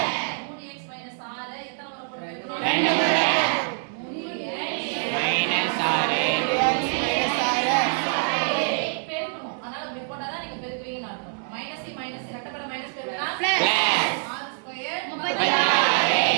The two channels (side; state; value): left; silent; 62 dB below the other